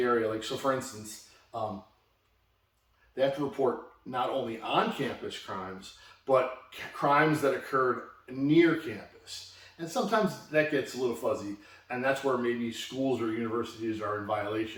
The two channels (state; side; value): identical; both; correlation 1.00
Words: area. Like, so for instance, they have to report not only on campus crimes, but crimes that occurred near campus. And sometimes that gets a little fuzzy, and that's where maybe schools or universities are in